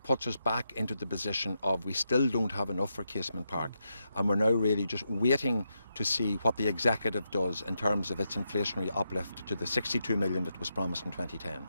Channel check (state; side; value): inverted; both; correlation -0.84